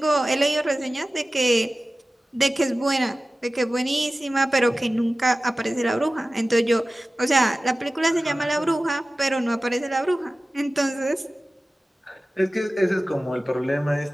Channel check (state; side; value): normal; both; correlation 0.96